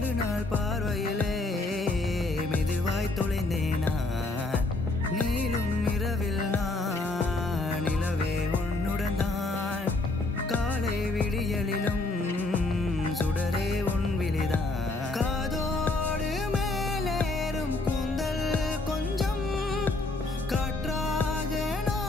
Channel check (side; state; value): right; quieter; 3.0 dB